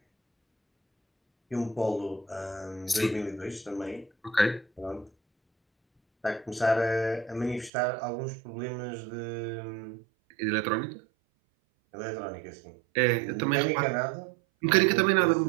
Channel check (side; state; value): left; drops out; at 7.7 s